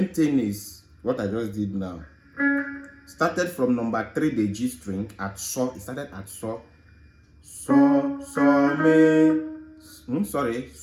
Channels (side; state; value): both; identical; correlation 1.00